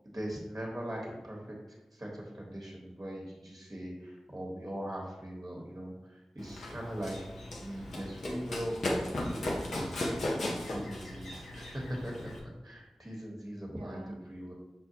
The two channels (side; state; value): both; normal; correlation 0.93